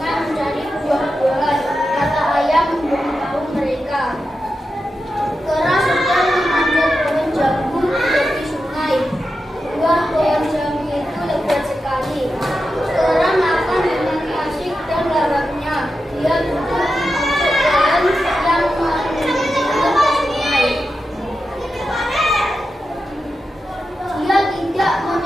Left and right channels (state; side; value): normal; both; correlation 0.90